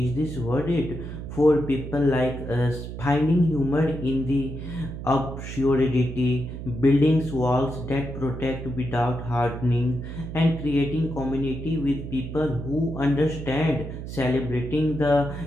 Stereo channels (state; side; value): noise; right; hum, 8 dB below the sound